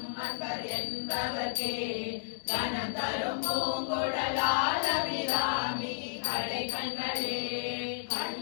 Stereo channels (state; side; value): silent; right; digital silence